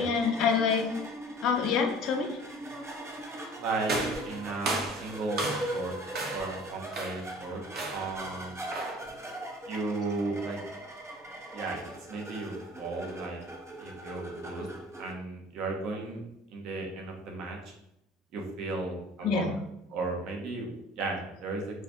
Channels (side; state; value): both; normal; correlation 0.46